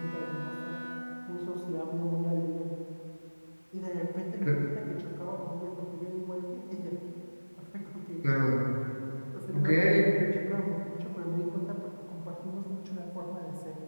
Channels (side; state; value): both; inverted; correlation -1.00